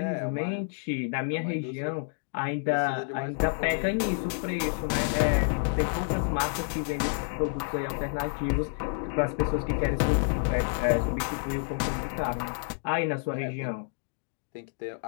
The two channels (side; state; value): right; silent; 59 dB below the other